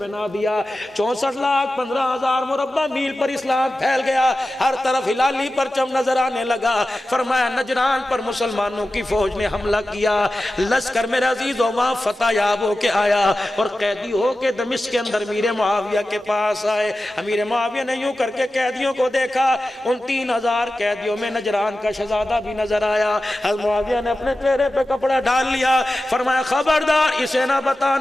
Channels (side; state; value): both; normal; correlation 0.94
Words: دیا. 64,15,000 مربع میل پر اسلام پھیل گیا، ہر طرف ہلالی پرچم نظر آنے لگا. فرمایا نجران پر مسلمانوں کی فوج نے حملہ کیا، لشکر میرے عزیز وہاں فتح یاب ہو کے آیا اور قیدی ہو کے دمشق کے اندر امیر معاویہ کے پاس آئے. امیر معاویہ نے یوں کر کے قیدیوں کو دیکھا، ان 3,000 قیدیوں میں نجران کا شہزادہ بھی نظر آیا. حضرت معاویہ نے اپنے چہرے پہ کپڑا ڈال لیا. فرمایا خبردار اسے نہ